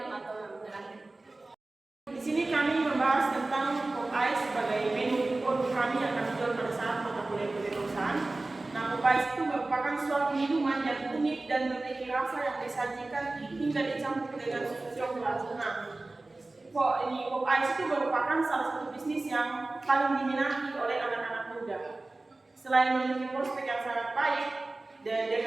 atau yang terakhir. Di sini kami membahas tentang Popeyes sebagai menu produk kami yang akan dijual pada saat mata kuliah kewirausahaan. Nah, Popeyes itu merupakan suatu minuman yang unik dan memiliki rasa yang disajikan hingga dicampur dengan susu coklat. Nah, Popeyes itu merupakan salah satu bisnis yang paling diminati oleh anak-anak muda. Selain memiliki prospek yang sangat baik dan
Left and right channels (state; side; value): quieter; left; 3.1 dB